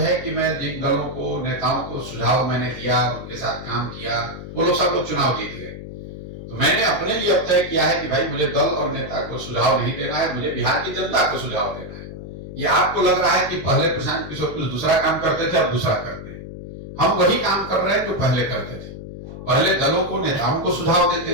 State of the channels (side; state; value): left; noise; hum, 11 dB below the sound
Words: कि मैं जिन दलों को, नेताओं को सुझाव मैंने दिया, उनके साथ काम किया, वो लोग सब लोग चुनाव जीत गए। तो मैंने अपने लिए अब तय किया है कि भाई मुझे दल और नेता को सुझाव नहीं देना है, मुझे बिहार की जनता को सुझाव देना है। ये आपको लग रहा है कि पहले प्रशांत किशोर कुछ दूसरा काम करते थे, अब दूसरा करते हैं। हम वही काम कर रहे हैं जो पहले करते थे। पहले दलों को, नेताओं को सुझाव